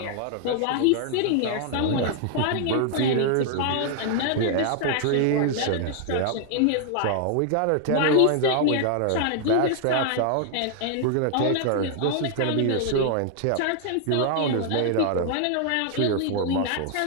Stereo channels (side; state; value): both; different; correlation 0.00